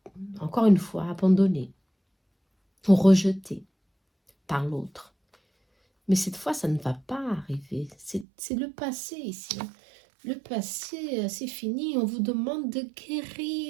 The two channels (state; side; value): drops out; left; at 8.2 s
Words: encore une fois abandonné ou rejeté par l'autre. Mais cette fois, ça ne va pas arriver. C'est le passé ici. Hein. Le passé, c'est fini. On vous demande de